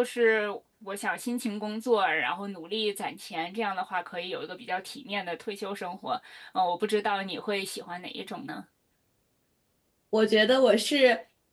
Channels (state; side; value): identical; both; correlation 1.00